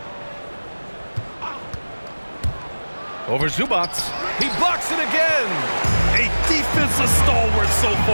Over Zubats. He blocks it again. A defensive stalwart so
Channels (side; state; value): both; inverted; correlation -1.00